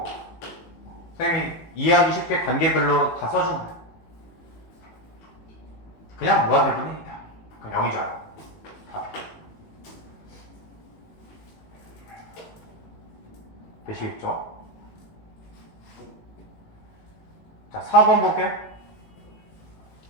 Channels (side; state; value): right; late; 18 ms